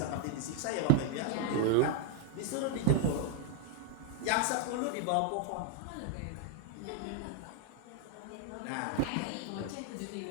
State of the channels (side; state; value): both; different; correlation 0.00